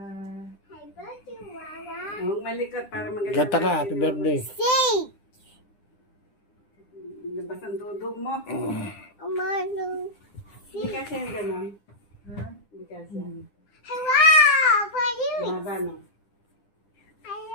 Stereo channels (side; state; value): right; late; 9.9 ms